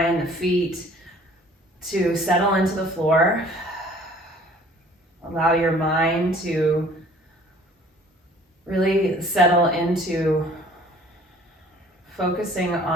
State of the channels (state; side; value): normal; both; correlation 0.53